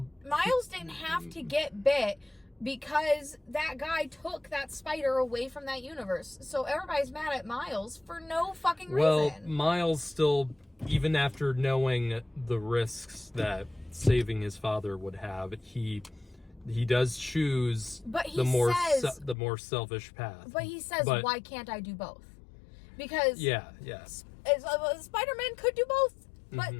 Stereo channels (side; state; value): right; drops out; at 19.4 s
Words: Miles didn't have to get bit because that guy took that spider away from that universe. So everybody's mad at Miles for no fucking reason. Well, Miles still, even after knowing the risks that saving his father would have, he does choose the more selfish path. But he says, why can't I do both? Because Spider-Man could do both, but